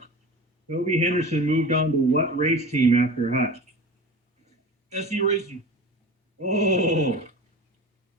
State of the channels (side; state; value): both; normal; correlation 0.34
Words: Toby Henderson moved on to what race team after Hutch? SE Racing. Oh,